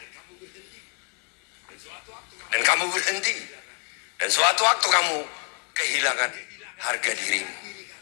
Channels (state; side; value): quieter; right; 33.8 dB